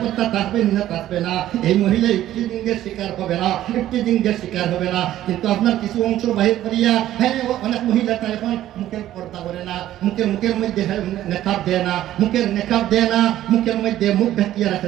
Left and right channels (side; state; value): left; quieter; 13.2 dB